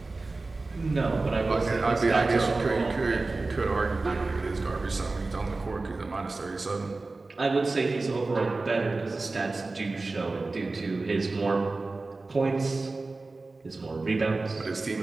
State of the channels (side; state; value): left; quieter; 3.5 dB